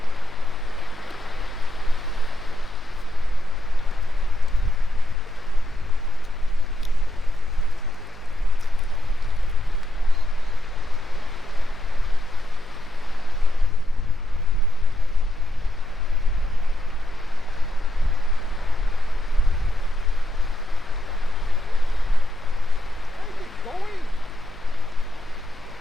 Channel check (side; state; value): left; noise; hum, 22 dB below the sound